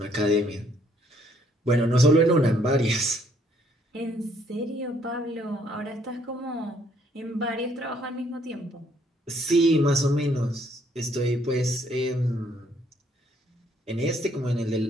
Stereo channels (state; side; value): normal; both; correlation 0.66